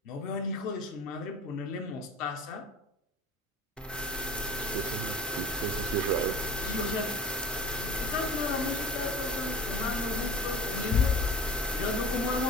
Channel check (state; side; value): normal; both; correlation 0.38